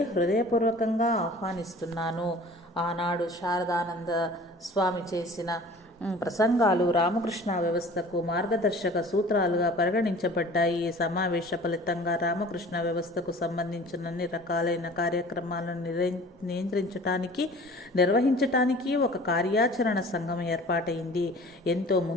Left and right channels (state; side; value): normal; both; correlation 0.45